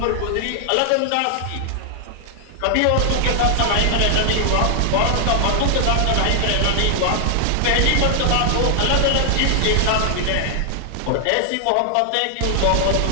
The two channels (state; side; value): different; both; correlation 0.00